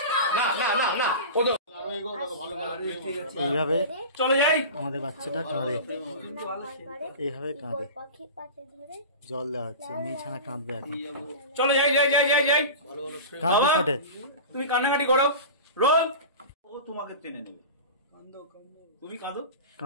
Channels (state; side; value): inverted; both; correlation -0.31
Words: না না না না, ও তো এইভাবে চলে যাই। আমাদের বাচ্চাটা কাঁদে, এইভাবে কাঁদে, পাখির পাশে ধরে জল দেওয়া হচ্ছে, মেয়েছানা কাঁদবে এখন, চলে যাই যাই যাই যাই যাই। কাঁদবে বাবা, ফোটে। তুমি কান্নাকাটি করো, রোল। ও তোমাকে টেনে নেবে। তুমি কাঁদো,